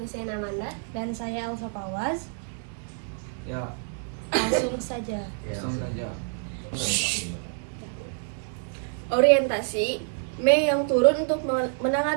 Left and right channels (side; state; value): left; silent; 60 dB below the other